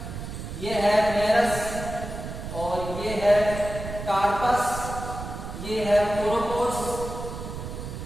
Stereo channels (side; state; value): right; noise; rumble, 8 dB below the sound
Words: ये है मेरस, और ये है कार्पस, ये है कोरोपोड्स,